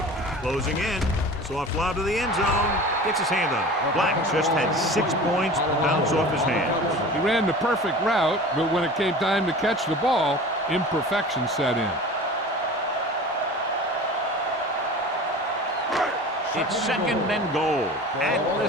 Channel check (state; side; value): normal; both; correlation 0.38